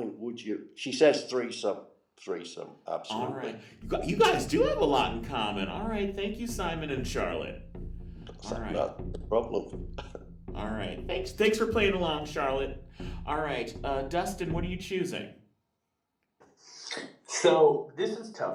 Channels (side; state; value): both; identical; correlation 1.00